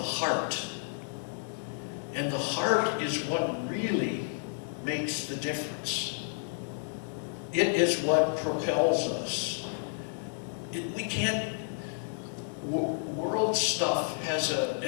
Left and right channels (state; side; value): silent; right; digital silence